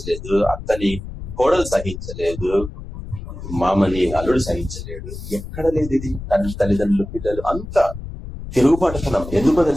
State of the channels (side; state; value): left; noise; rumble, 10 dB below the sound